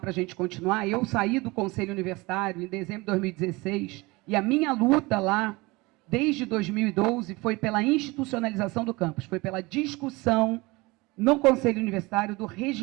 a gente continuar. Eu saí do Conselho Universitário em dezembro de 2016 e a minha luta lá, desde 2012, foi pela institucionalização do campus, foi pela discussão no Conselho Universitário do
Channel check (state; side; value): quieter; left; 23.3 dB